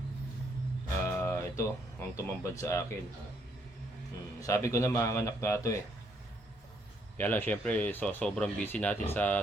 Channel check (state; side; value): normal; both; correlation 0.72